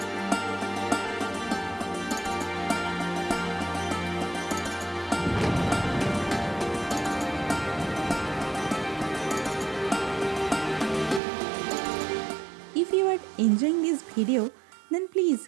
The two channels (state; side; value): drops out; left; at 11.2 s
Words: If you are enjoying this video, then please